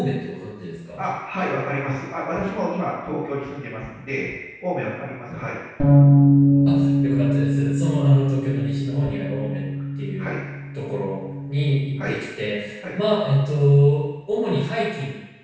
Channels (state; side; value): identical; both; correlation 1.00